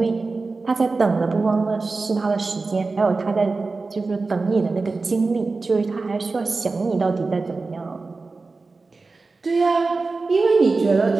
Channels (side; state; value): left; quieter; 3.9 dB